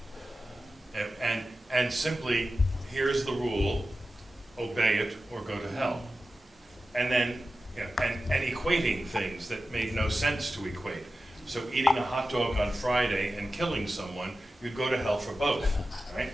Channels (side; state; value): both; normal; correlation 0.93